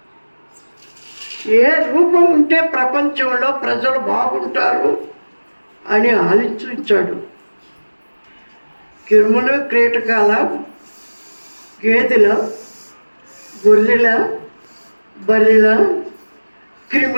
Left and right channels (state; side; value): inverted; both; correlation -1.00